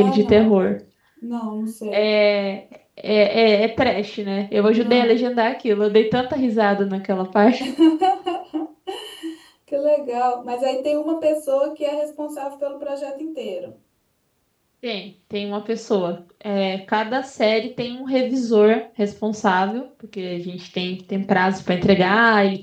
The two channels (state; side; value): identical; both; correlation 1.00